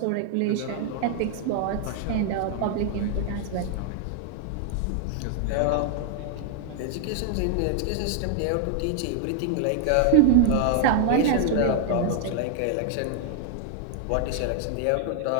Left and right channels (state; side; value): different; both; correlation 0.00